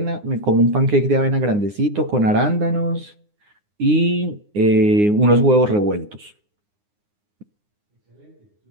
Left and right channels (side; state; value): left; late; 9.7 ms